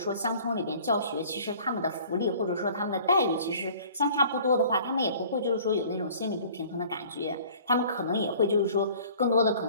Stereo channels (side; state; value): both; inverted; correlation -0.51